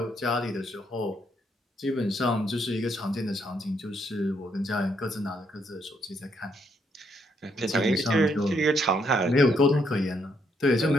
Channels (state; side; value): normal; both; correlation 0.74